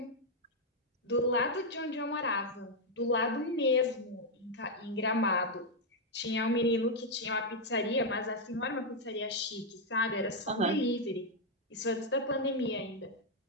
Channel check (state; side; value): normal; both; correlation -0.01